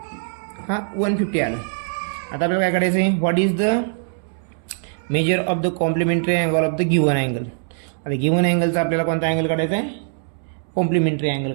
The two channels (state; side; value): silent; left; 64 dB below the other